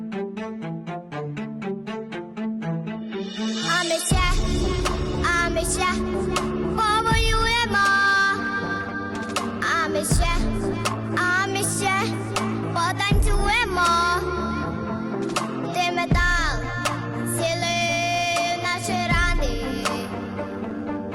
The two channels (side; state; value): both; identical; correlation 1.00